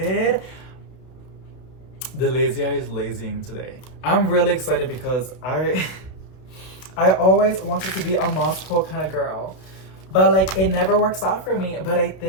The lazy eye is lazing today. I'm really excited because I always wanted to be a moss pole kind of girl. But like it never works out for me. But I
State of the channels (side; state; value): right; late; 32 ms